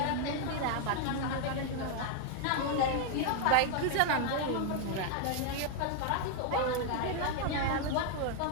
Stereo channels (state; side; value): different; both; correlation 0.00